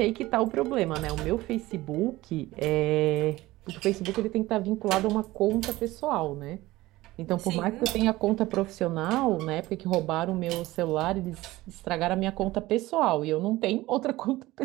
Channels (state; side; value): quieter; left; 18.2 dB